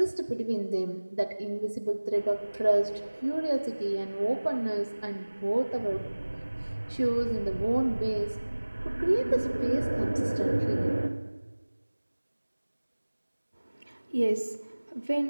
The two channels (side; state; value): both; inverted; correlation -1.00